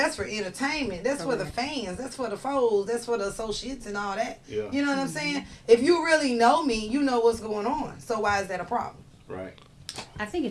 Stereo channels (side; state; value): both; identical; correlation 1.00